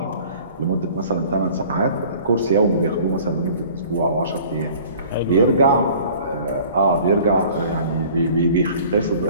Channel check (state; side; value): inverted; both; correlation -0.49